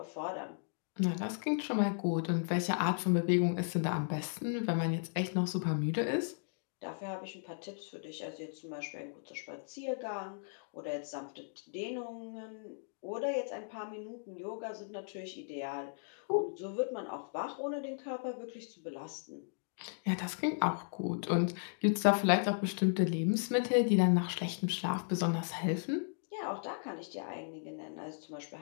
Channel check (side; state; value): right; silent; digital silence